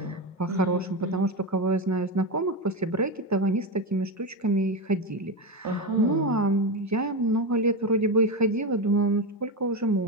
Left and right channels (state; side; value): normal; both; correlation 0.14